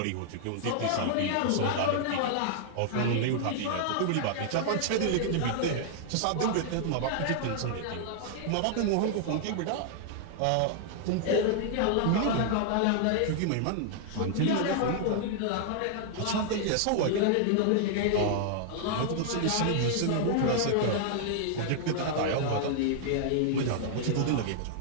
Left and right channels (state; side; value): different; both; correlation -0.01